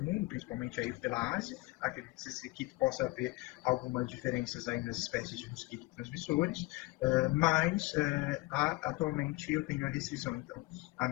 principalmente aí pela Ásia. Acredita-se que possa haver algumas diferenças aí nas espécies de mosquitos transmissores, mas atualmente eu tenho a restrição, então,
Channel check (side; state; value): right; quieter; 21.6 dB